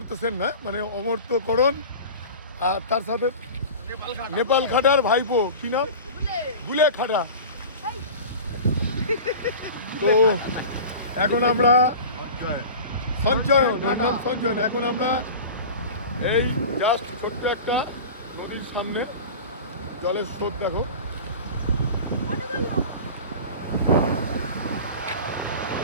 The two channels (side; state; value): both; inverted; correlation -0.35